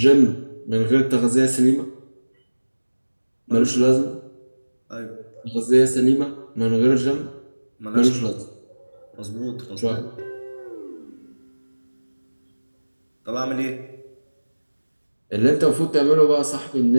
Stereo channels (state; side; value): inverted; both; correlation -1.00